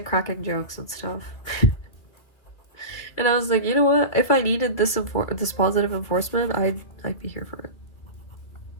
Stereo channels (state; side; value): late; right; 2.5 ms